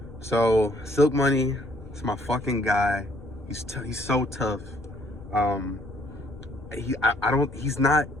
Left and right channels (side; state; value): both; normal; correlation 0.64